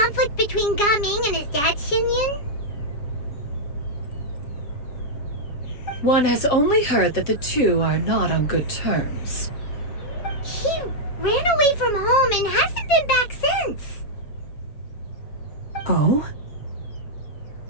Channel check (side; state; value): right; late; 7.2 ms